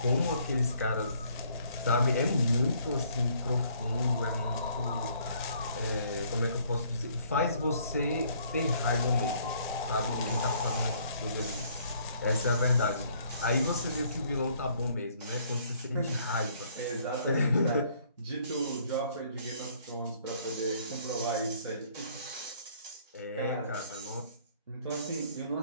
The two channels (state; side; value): inverted; both; correlation -0.63